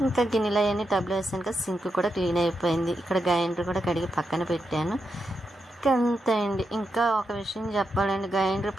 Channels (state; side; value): normal; both; correlation 0.85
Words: ఇంకా గిన్నెలు అవన్నీ టబ్లో వేసాను కదా, సింక్ కూడా క్లీన్ అయిపోయింది. ఇక్కడ గ్రైండర్ కూడా కడిగి పక్కన పెట్టాను. అంతే అండి. ఇంకా ఒక విషయం చెప్పాలండి, గ్రైండర్